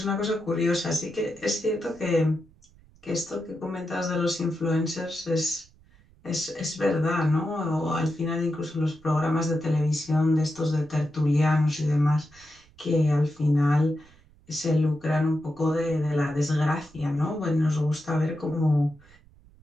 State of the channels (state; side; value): noise; right; rumble, 28 dB below the sound